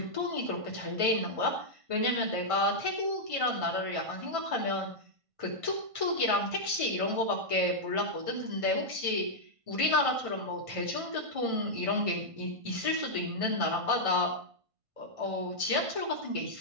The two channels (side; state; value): left; late; 1.5 ms